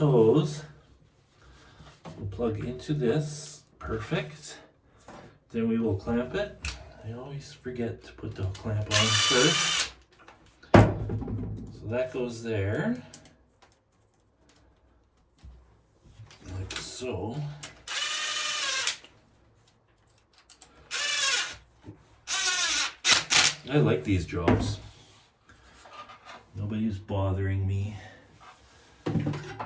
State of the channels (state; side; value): identical; both; correlation 1.00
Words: will plug into this. Perfect. Then we will clamp it. I always forget to put the clamp on first. So that goes there. Like so. I like these jobs. Nobody's bothering me.